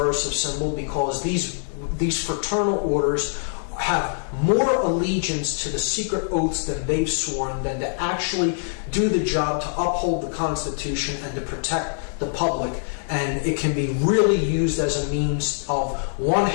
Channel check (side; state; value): right; silent; 58 dB below the other